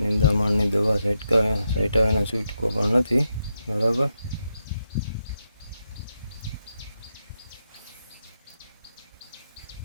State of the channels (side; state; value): both; inverted; correlation -0.84